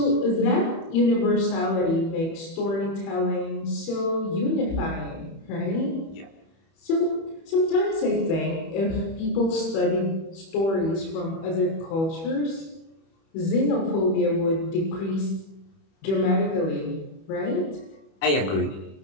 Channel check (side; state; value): right; late; 31 ms